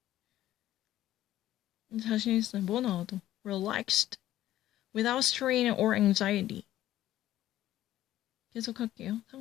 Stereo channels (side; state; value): right; quieter; 13.6 dB